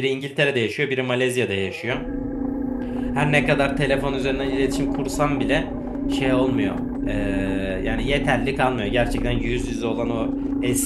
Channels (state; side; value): identical; both; correlation 1.00